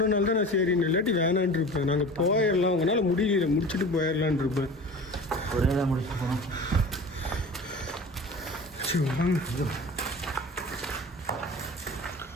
தான் நான் சரின்னு இல்லாட்டி வேணான் இருப்பேன். நாங்கள் போயிடலாம் உங்களால் முடியல முடிச்சுட்டு போயிடலான் இருப்பேன். ஒரே தான் முடிச்சு போனோம். சரி வாங்க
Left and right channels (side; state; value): both; normal; correlation 0.37